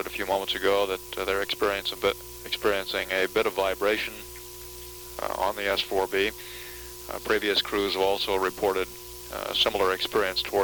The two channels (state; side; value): identical; both; correlation 1.00